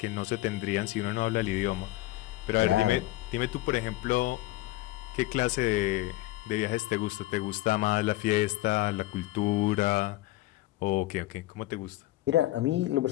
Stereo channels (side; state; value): right; quieter; 17.5 dB